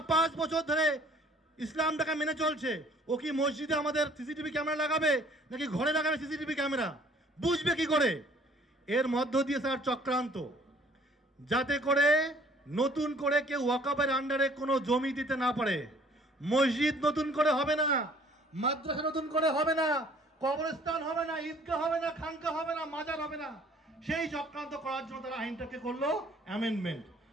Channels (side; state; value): both; normal; correlation 0.56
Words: 5 বছর ধরে ইসলামটাকে মেনে চলছে। ও কি মসজিদে আমাদের সিসিটিভি ক্যামেরা লাগাবে নাকি ঘরে লাগাবে সিসিটিভি ক্যামেরা? বুঝবে কি করে? এর মধ্য দিয়ে স্যার চক্রান্ত, যাতে করে নতুন করে কেউ ওয়াকফের আন্ডারে কোনো জমি দিতে না পারে। মসজিদ নতুন করে হবে না, মাদ্রাসা নতুন করে হবে না, কবরস্থান হবে না, ঈদগাহ হবে না, খানকা হবে না, মাজার হবে না। সেই চক্রান্ত করার জন্য তারা আইনটাকে করলো অ্যামেন্ডমেন্ট।